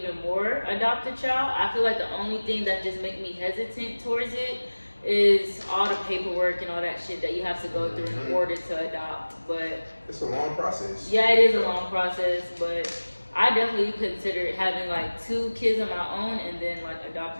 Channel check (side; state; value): both; inverted; correlation -1.00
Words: more adopt a child. I feel like the only thing that just make me hesitant towards it is all the paperwork and all that shit that you have to go through in Mhm. order to adopt. But It's a long process. yeah, it is a long process, but I definitely considered having like 2 kids of my own and then like